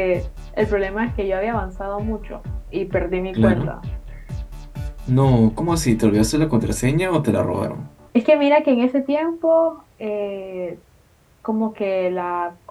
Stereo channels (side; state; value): both; identical; correlation 1.00